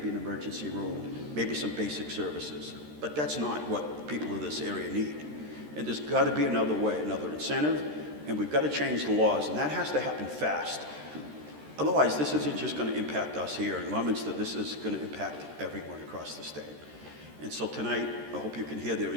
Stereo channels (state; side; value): late; left; 13 ms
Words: an emergency room, maybe some basic services. But that's not what people of this area need. And there's got to be another way, another incentive, and we've got to change the laws, and that has to happen fast. Otherwise, this isn't just going to impact us here in Leominster. This is going to impact everyone across the state. And so tonight, I hope you can hear their